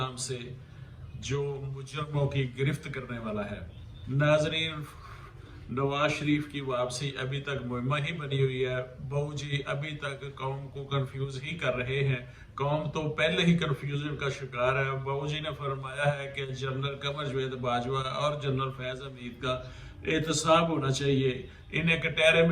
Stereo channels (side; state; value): both; identical; correlation 1.00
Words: سے جو مجرموں کی گرفت کرنے والا ہے۔ ناظرین، نواز شریف کی واپسی ابھی تک مہمہ ہی بنی ہوئی ہے۔ بہو جی ابھی تک قوم کو کنفیوز ہی کر رہے ہیں۔ قوم تو پہلے ہی کنفیوژن کا شکار ہے۔ بہو جی نے فرمایا ہے کہ جنرل قمر جاوید باجوہ اور جنرل فیض حمید کا احتساب ہونا چاہیے، انہیں کٹہرے